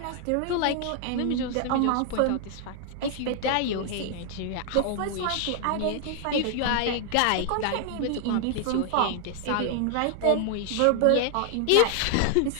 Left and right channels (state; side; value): different; both; correlation 0.00